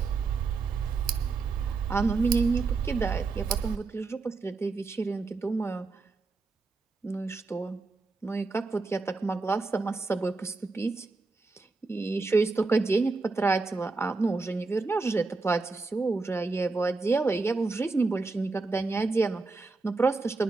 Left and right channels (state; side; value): quieter; left; 3.9 dB